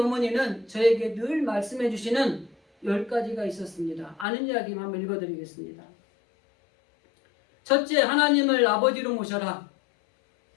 저에게 늘 말씀해 주시는 10가지가 있었습니다. 아는 이야기만 한번 읽어드리겠습니다. 첫째, 하나님을 아버지로 모셔라.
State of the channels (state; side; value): drops out; right; at 4.2 s